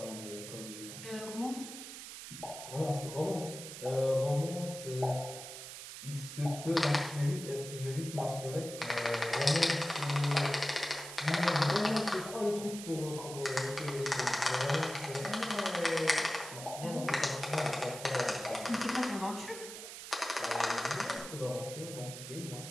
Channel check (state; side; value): noise; right; hiss, 10 dB below the sound